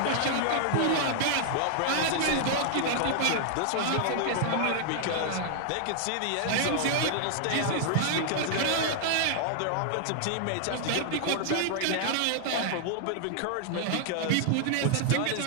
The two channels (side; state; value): both; different; correlation 0.00